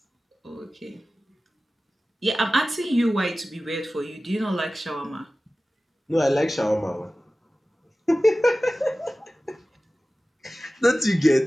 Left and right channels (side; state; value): both; normal; correlation 0.96